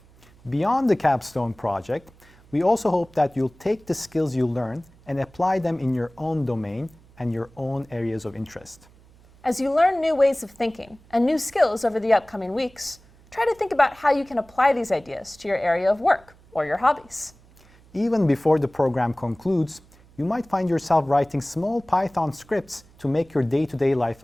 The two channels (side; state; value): right; noise; hum, 27 dB below the sound